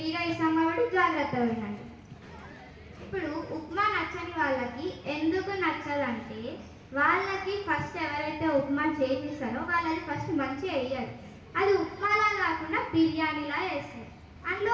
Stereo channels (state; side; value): identical; both; correlation 1.00